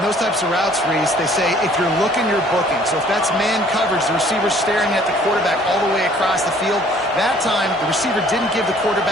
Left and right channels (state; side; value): normal; both; correlation 0.57